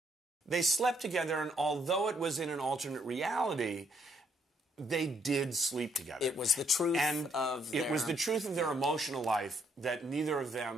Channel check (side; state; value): both; normal; correlation 0.71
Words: They slept together, and although it was in an alternate reality, they did sleep together. It was the truth of their... It was the truth of their emotional life that neither of